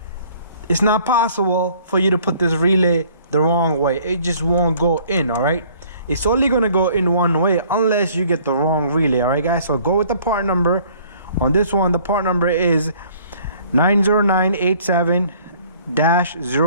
it's not possible for you to put this relay the wrong way. It just won't go in. All right, it's only gonna go in one way unless you get the wrong relay. All right guys, so go with the part number on this one. The part number is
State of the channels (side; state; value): both; inverted; correlation -0.56